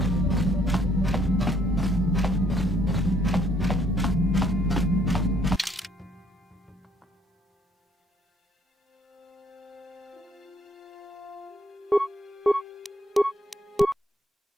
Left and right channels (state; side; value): normal; both; correlation 0.66